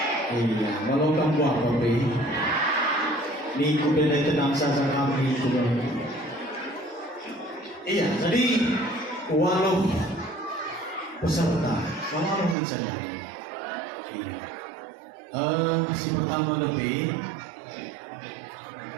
Iya, walau kamu apa be? Ni ku benda tenang saja kami ku. Iya, jadi walau peserta, walau mencari. Iya. Si pertama lebih,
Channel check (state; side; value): drops out; left; at 12.6 s